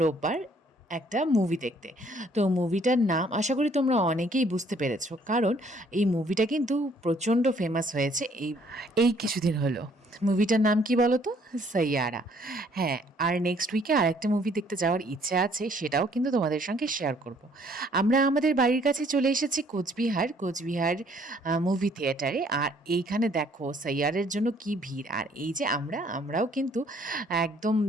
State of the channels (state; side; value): normal; both; correlation 0.62